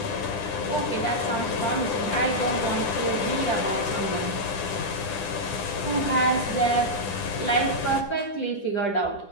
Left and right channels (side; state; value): right; late; 10 ms